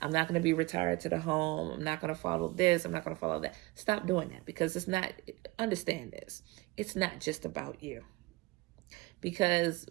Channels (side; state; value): left; quieter; 22.5 dB